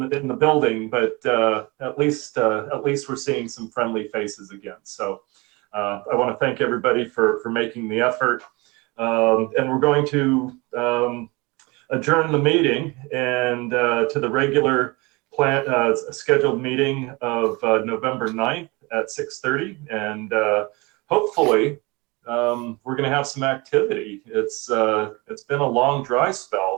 the building, but at least we're seeing some friendly faces again. So I want to thank everybody for making the effort, and we're going to adjourn the meeting and to the regular scheduled meeting of November 9th at 6:30, and hopefully we're going to have some activity. It's been a long dry spell,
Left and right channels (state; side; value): quieter; left; 25.6 dB